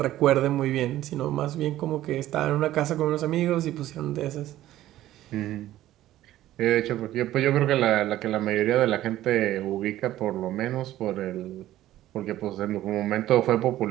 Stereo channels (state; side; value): quieter; left; 14.1 dB